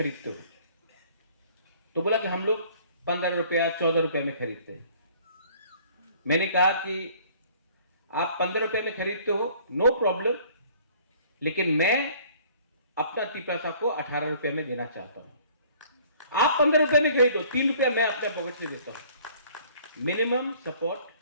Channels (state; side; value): inverted; both; correlation -0.55